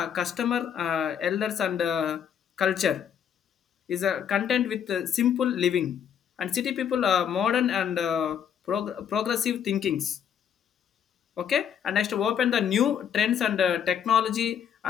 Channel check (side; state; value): right; quieter; 8.4 dB